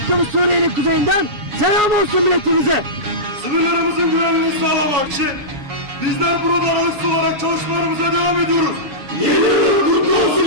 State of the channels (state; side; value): late; left; 7.1 ms